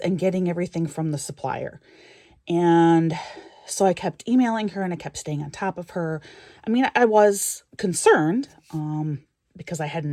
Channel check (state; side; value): identical; both; correlation 1.00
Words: getting everything from the supplier. And so I kept emailing her and I kept staying on top of her. I mean, I was concerned, because I